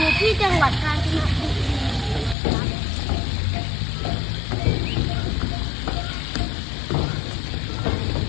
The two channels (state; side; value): drops out; right; at 2.4 s